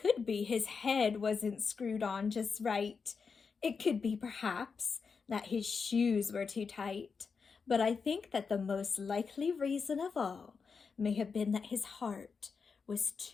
be his head wasn't screwed on just right. It could be, perhaps, that his shoes were too tight. But I think that the most likely reason of all may have been that his heart was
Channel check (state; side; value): quieter; right; 5.4 dB